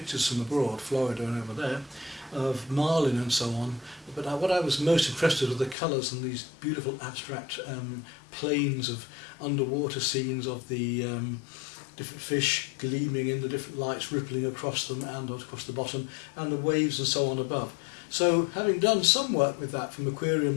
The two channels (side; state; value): right; drops out; at 5.8 s